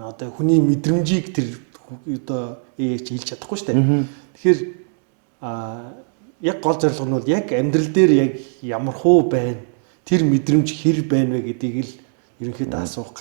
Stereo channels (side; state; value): left; silent; 65 dB below the other